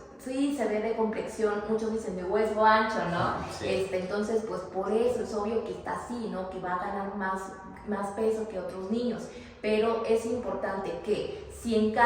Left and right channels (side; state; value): both; identical; correlation 1.00